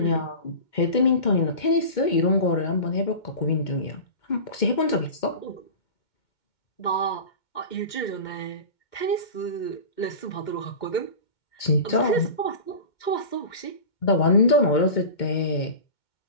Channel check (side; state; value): right; late; 2.2 ms